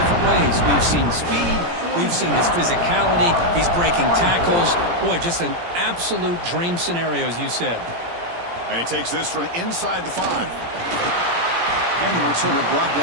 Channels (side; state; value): left; late; 17 ms